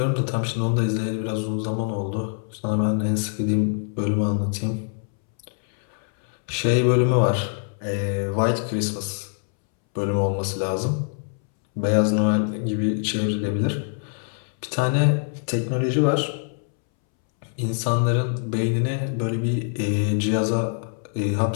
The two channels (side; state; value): right; silent; 62 dB below the other